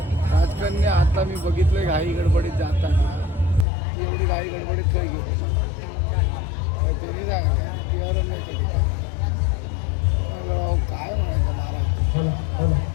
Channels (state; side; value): drops out; right; at 3.7 s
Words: राजकन्या आता मी बघितलंय घाई गडबडीत जाताना ती एवढी घाई गडबडीत खय गेली काय त्यांनी सांगितलं ती अरण्याच्या ठिकाणी म्हणलं, काय म्हणायचं